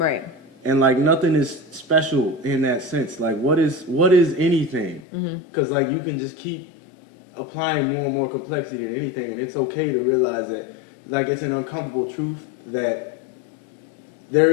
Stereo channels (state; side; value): drops out; right; at 5.0 s